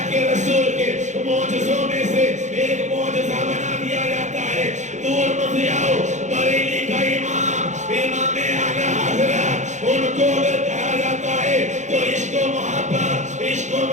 کے رسول کے معجزوں میں سے ایک معجزہ بنا دیا جاتا ہے۔ دور مت جاؤ، بریلی کا امام اعلیٰ حضرت، ان کو اگر کہا جاتا ہے تو عشق و محبت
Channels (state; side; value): late; left; 0.35 ms